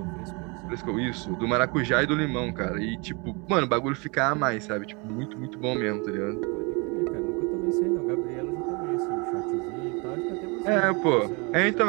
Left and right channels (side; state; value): left; quieter; 29.8 dB